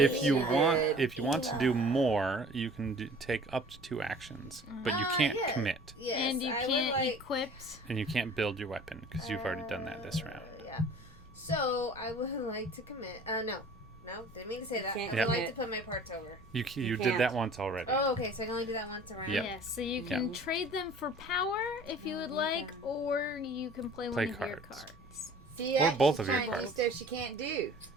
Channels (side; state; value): both; normal; correlation 0.47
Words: what you she want, did. if you want to do more, you can take up to 2 actions, but you can't yeah. commit, Yes, And you I would can't like, equip. and you can't build your weapon because you've already done that this round. Yeah. So I would like to commit. No, didn't mean to say that. I Can't would Yeah. like to put my parts over. You did can't. that once already. Oh, okay. So I can only do that once around. Yep. Yes, so you can trade them for power if you would like, or you can play one of your cards. cards. See, Or that both she's of your trying to do parts. stuff she can't do.